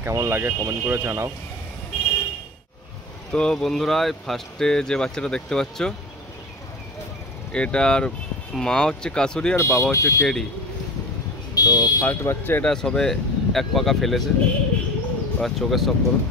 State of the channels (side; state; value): both; normal; correlation 0.33